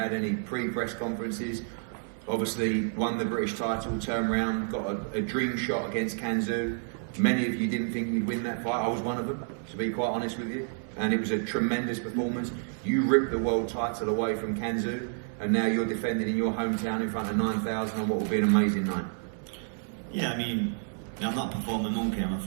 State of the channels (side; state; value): left; silent; 58 dB below the other